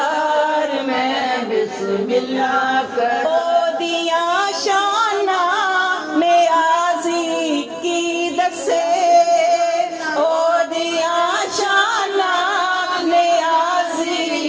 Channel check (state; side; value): identical; both; correlation 1.00